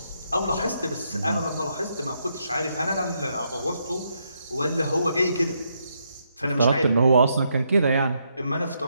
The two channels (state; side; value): inverted; both; correlation -0.78